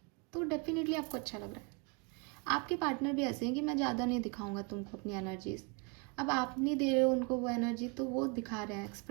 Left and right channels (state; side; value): quieter; left; 31.5 dB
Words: तो डेफिनेटली आपको अच्छा लग रहा है। आपके पार्टनर भी ऐसे हैं कि मैं ज़्यादा नहीं दिखाऊंगा तुमको अपनी एनर्जीज, अब आप नहीं दे रहे हो उनको वो एनर्जी, तो वो दिखा रहे हैं,